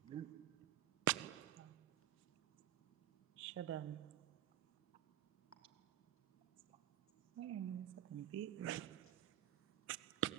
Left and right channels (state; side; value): quieter; left; 12.5 dB